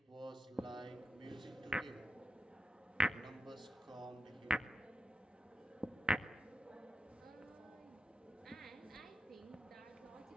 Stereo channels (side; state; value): both; normal; correlation 0.89